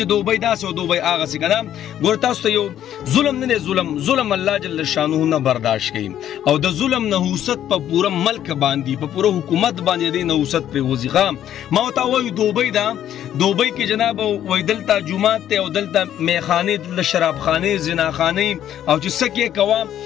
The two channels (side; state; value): right; quieter; 11.0 dB